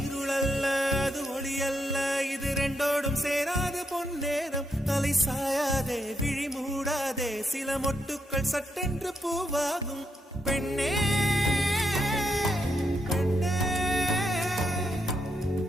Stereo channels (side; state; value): both; normal; correlation 0.81